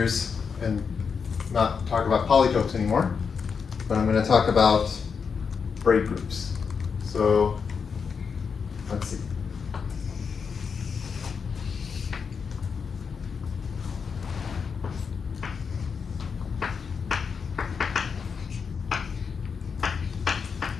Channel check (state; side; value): quieter; right; 5.9 dB